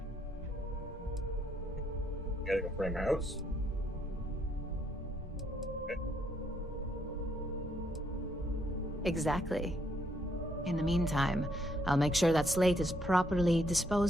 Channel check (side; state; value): both; normal; correlation 0.72